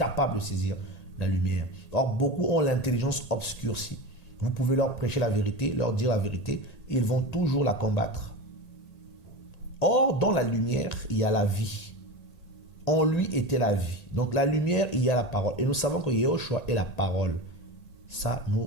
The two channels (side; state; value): right; late; 1.9 ms